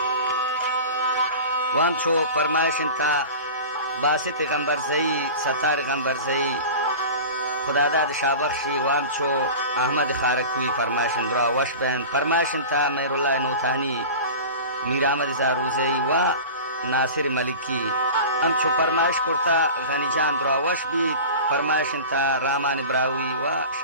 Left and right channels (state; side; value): inverted; both; correlation -0.33